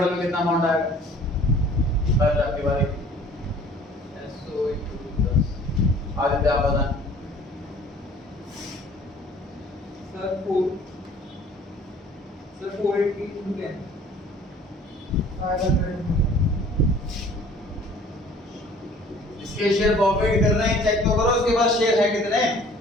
में कितना अमाउंट आएगा? बस आपकी बारी। SO into 10 आदित्य आप बताएं। सर 480 into 10 500 इसके शेयर प्रॉफिट कर रहे हैं, चेक तो करो इसके पास शेयर है कितने,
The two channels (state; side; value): normal; both; correlation 0.52